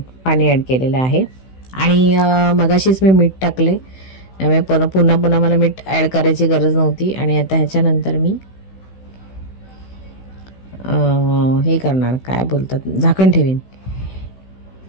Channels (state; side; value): late; right; 16 ms